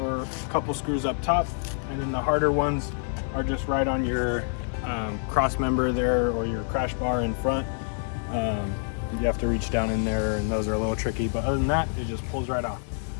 screws up top, and then the harder ones are just right on your cross member there or your crash bar in front. You have to reach down in there and those are a little tricky, but other than that, it just pulls right off.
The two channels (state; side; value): silent; right; 60 dB below the other